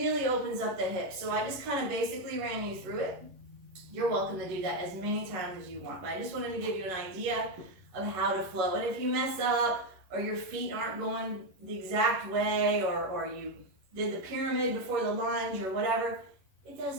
opens up the hips. So I just kind of basically ran you through it. You're welcome to do that as many times as you want, but I just wanted to give you an idea of how to flow. And if you mess up, or your feet aren't going the exact way, or you did the pyramid before the lunge or whatever, it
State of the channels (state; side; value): late; left; 11 ms